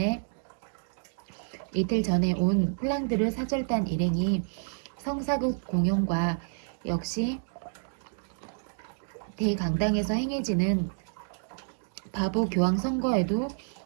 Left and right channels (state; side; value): silent; left; 58 dB below the other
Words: 온 플랑드르 사절단 일행이 성사극 공연과 역시 대강당에서 행해지는 바보 교황 선거에도